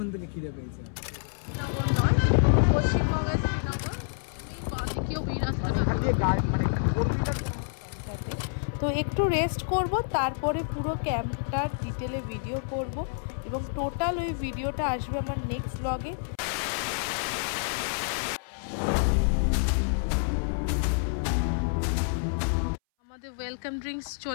থেকে খিদে পেয়েছে। শ্রীনগর নয়, পশ্চিমবঙ্গের শ্রীনগর। তো একটু রেস্ট করব, তারপরে পুরো ক্যাম্পটার ডিটেলে ভিডিও করব এবং টোটাল ওই ভিডিওটা আসবে আমার নেক্সট ব্লগে। আমাদের ওয়েলকাম ড্রিঙ্কস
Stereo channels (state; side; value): silent; right; 59 dB below the other